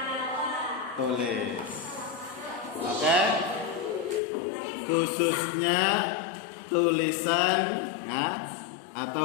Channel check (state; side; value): drops out; right; at 4.2 s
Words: tulis. Oke? Khususnya tulisan ya,